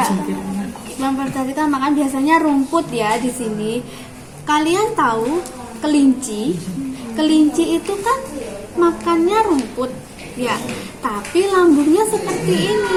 memfermentasikan makan biasanya rumput ya di sini. Kalian tahu kelinci? Kelinci itu kan makannya rumput ya, tapi lambungnya seperti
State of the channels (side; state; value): both; identical; correlation 1.00